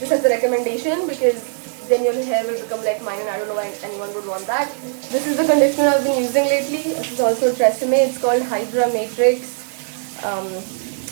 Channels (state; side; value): silent; left; 55 dB below the other